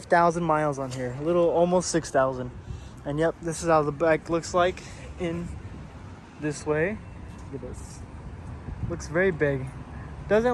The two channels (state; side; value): identical; both; correlation 1.00